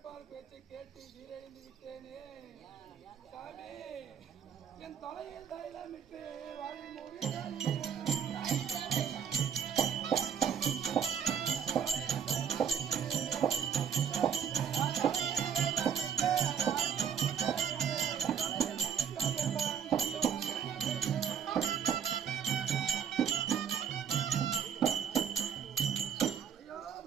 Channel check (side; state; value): left; quieter; 7.7 dB